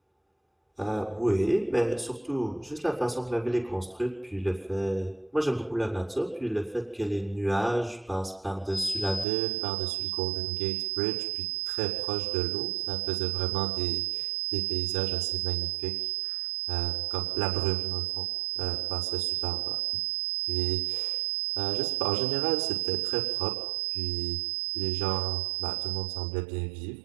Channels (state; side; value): drops out; left; at 9.2 s